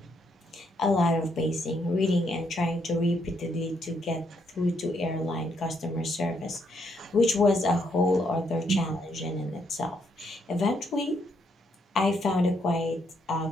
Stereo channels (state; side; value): normal; both; correlation 0.75